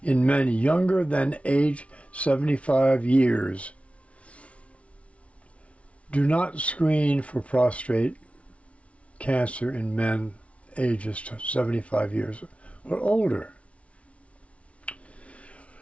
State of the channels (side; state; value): right; late; 0.063 ms